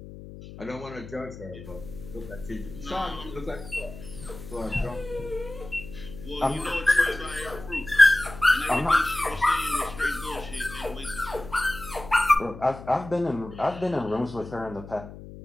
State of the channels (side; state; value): left; noise; hum, 14 dB below the sound